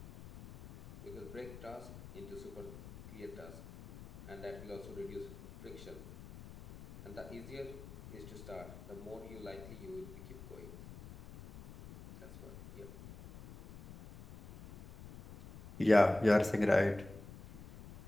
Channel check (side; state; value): left; noise; rumble, 14 dB below the sound